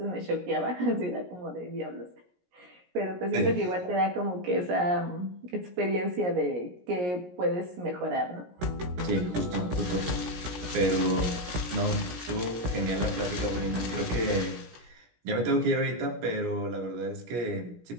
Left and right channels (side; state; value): left; late; 17 ms